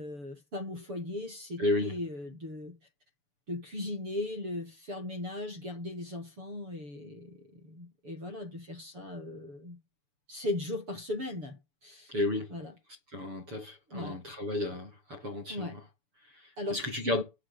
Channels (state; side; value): late; left; 6.9 ms